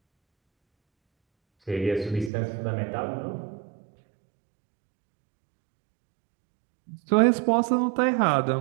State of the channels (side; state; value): left; drops out; at 2.3 s